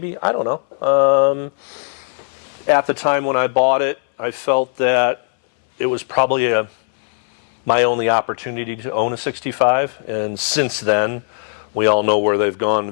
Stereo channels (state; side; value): silent; right; 64 dB below the other